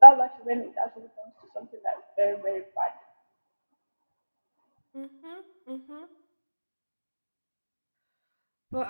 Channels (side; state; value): both; inverted; correlation -1.00